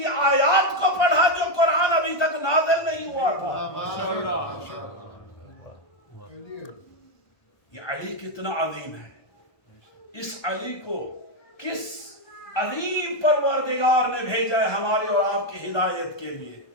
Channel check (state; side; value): late; right; 1.2 ms